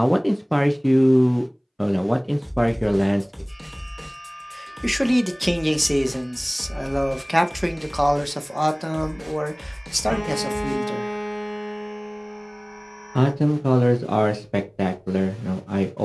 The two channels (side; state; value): both; identical; correlation 1.00